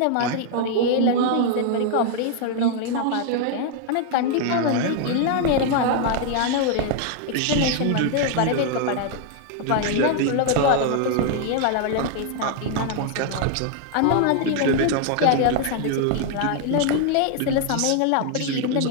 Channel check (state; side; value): different; both; correlation 0.00